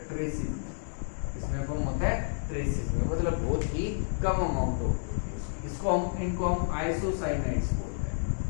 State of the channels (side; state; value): right; silent; digital silence